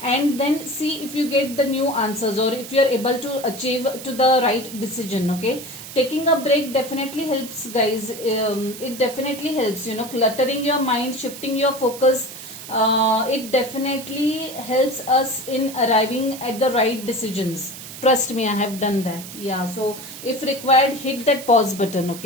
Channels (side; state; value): right; noise; hiss, 13 dB below the sound